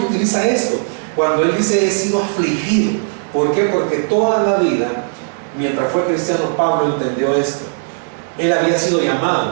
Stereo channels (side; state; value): left; silent; digital silence